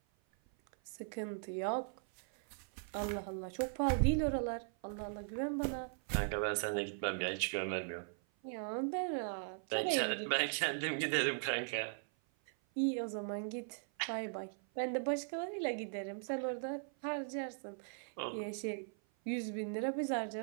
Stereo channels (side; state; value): left; silent; 52 dB below the other